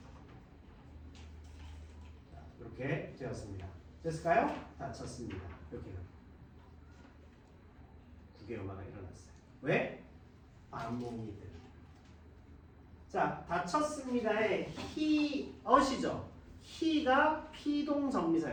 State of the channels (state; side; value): identical; both; correlation 1.00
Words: 자, 이렇게 되었습니다. 됐을까요? 다쳤습니다. 이렇게. 국외음화가 일어났어요. 왜? 반몽이 때문에. 자, 다쳤습니다의 히엇이죠. 히가